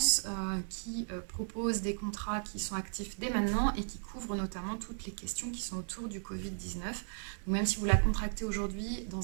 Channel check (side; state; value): left; silent; digital silence